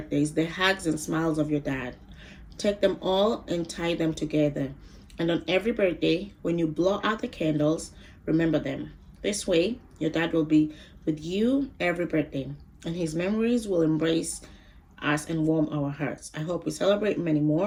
the hugs and smiles of your dad. Take them all and tie them together. And on every birthday, when you blow out the candles, remember them. This way, your dad will be with you every birthday, and his memories will embrace us and warm our hearts. I hope we celebrate many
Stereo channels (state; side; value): identical; both; correlation 1.00